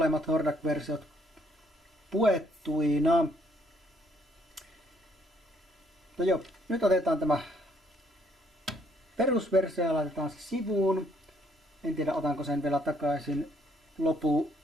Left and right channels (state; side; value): normal; both; correlation 0.67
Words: Hordak-versiot puettuina. No joo, nyt otetaan tämä perusversio ja laitetaan se sivuun. En tiedä otanko sen vielä takaisin